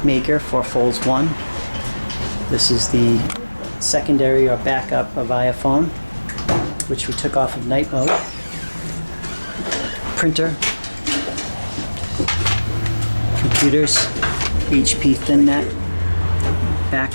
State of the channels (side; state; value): both; inverted; correlation -1.00